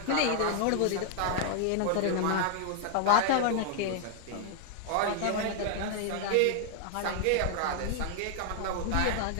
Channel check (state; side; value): different; both; correlation 0.00